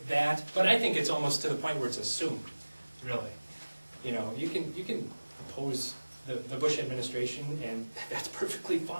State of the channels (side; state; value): both; inverted; correlation -1.00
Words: that, but I think it's almost to the point where it's assumed, really. You can oppose the Bush administration, and that's perfectly